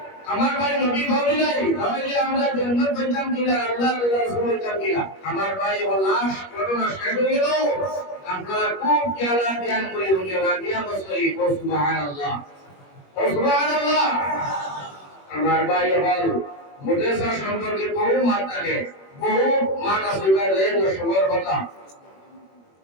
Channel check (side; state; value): right; late; 21 ms